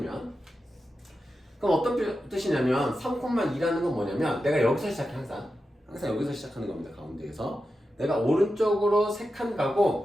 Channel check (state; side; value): normal; both; correlation 0.90